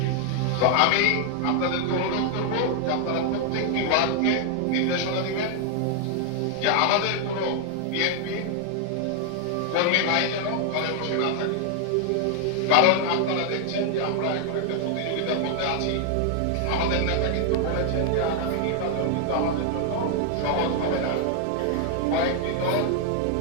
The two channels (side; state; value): both; different; correlation 0.00